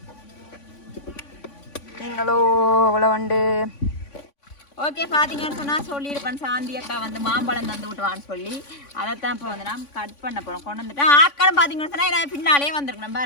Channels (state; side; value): late; right; 3.5 ms